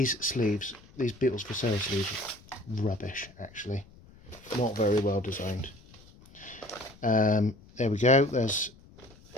sleeves, these Beatles for Sale sleeves, are rubbish actually, not very well designed. There we go. There's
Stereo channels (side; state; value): left; noise; rumble, 24 dB below the sound